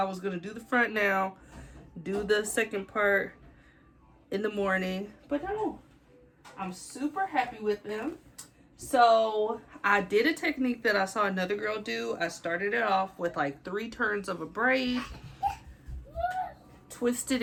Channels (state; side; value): identical; both; correlation 1.00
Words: was gonna do the front now, do the second part in the morning, but no, I'm super happy with them. So I did a technique that I saw another girl do. I started it off with like 3 turns of a braid, twisted